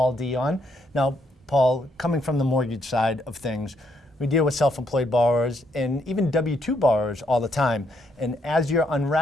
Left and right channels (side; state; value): both; normal; correlation 0.74